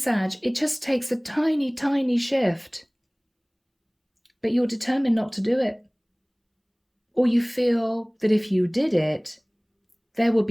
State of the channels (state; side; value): identical; both; correlation 1.00